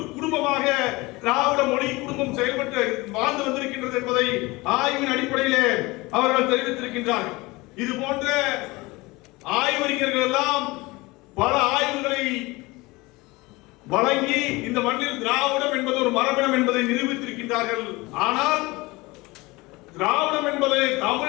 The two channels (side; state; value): right; quieter; 22.6 dB